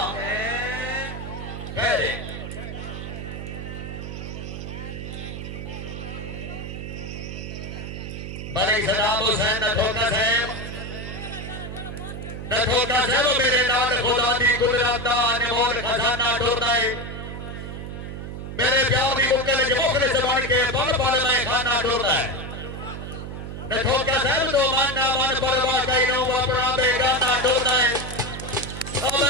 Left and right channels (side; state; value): right; noise; hum, 8 dB below the sound